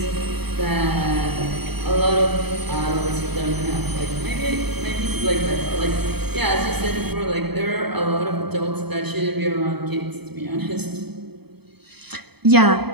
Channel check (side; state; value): left; late; 0.98 ms